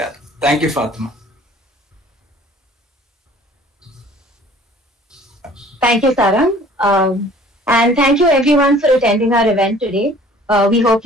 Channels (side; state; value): both; normal; correlation 0.51